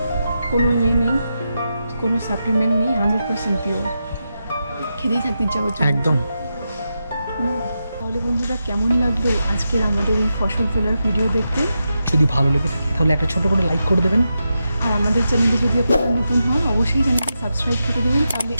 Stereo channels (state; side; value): inverted; both; correlation -0.88